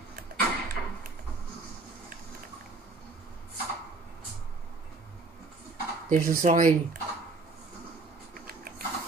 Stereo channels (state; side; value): quieter; left; 3.5 dB